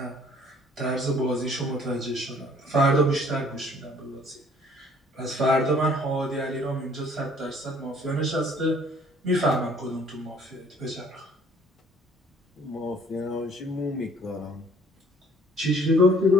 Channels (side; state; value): both; normal; correlation 0.57